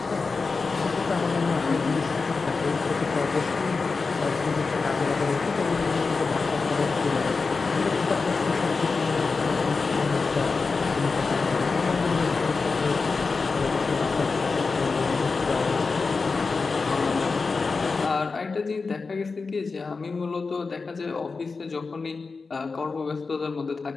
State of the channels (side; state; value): right; quieter; 4.3 dB